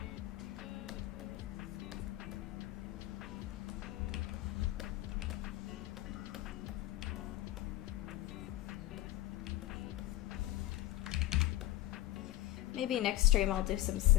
Maybe next stream I'll do some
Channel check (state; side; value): quieter; right; 15.5 dB